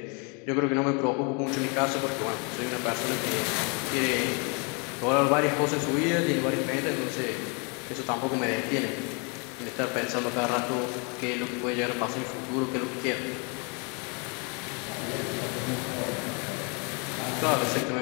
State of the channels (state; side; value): quieter; right; 33.9 dB